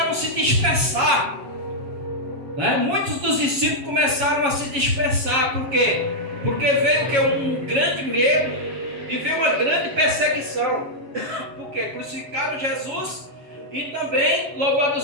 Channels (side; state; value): left; late; 7.3 ms